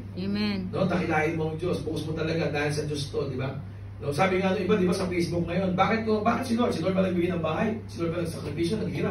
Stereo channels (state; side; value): identical; both; correlation 1.00